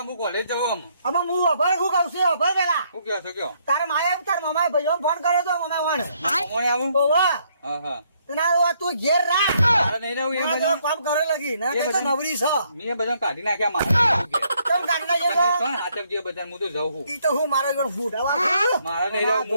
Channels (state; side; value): inverted; both; correlation -0.71